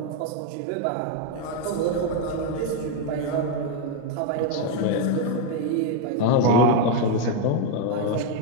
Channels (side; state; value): both; different; correlation 0.01